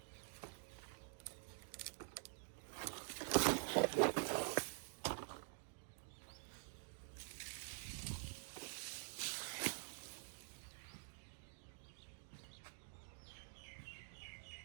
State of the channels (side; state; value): left; silent; digital silence